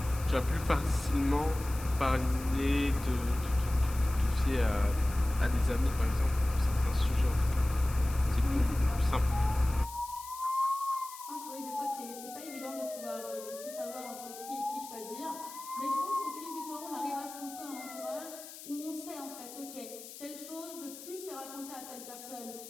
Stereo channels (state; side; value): noise; left; hiss, 14 dB below the sound